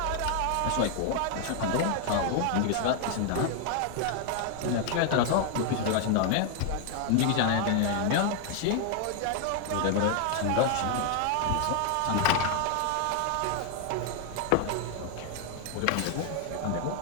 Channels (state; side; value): different; both; correlation 0.01